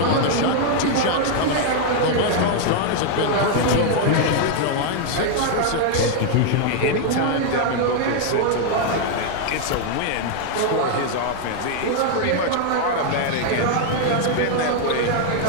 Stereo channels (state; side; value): different; both; correlation 0.00